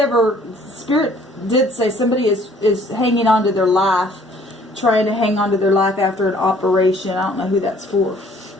Spirit did say somebody is hanging on to their life, trying to hang on to their life after an operation. I don't know who that's for,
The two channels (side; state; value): both; normal; correlation 0.58